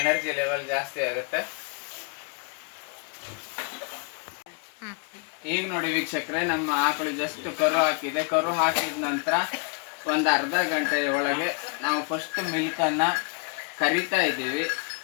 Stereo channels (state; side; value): quieter; right; 35.9 dB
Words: ಲೆವೆಲ್ ಜಾಸ್ತಿ ಆಗುತ್ತೆ. ಈಗ ನೋಡಿ ವೀಕ್ಷಕರೇ, ನಮ್ಮ ಆಕಳು ಜಸ್ಟ್ ಕರು ಹಾಕಿದೆ. ಕರು ಹಾಕಿದ ನಂತರ ಒಂದು ಅರ್ಧ ಗಂಟೆಯ ಒಳಗೆ ನಾವು ಫಸ್ಟ್ ಮಿಲ್ಕನ್ನು ಕರಿತಾ ಇದ್ದೀವಿ.